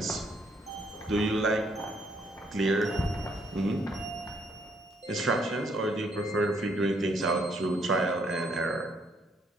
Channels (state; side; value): normal; both; correlation 0.69